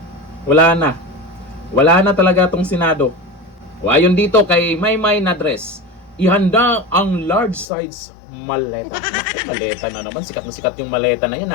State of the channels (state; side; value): drops out; right; at 7.7 s